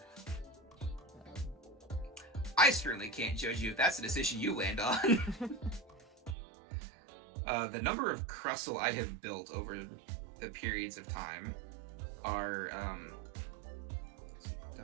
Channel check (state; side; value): drops out; left; at 6.4 s